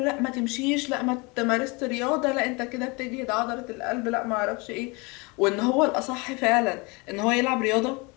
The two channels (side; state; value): right; quieter; 27.7 dB